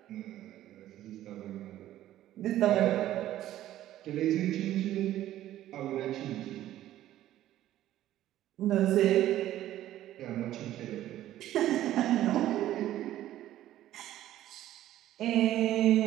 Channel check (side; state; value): left; quieter; 13.4 dB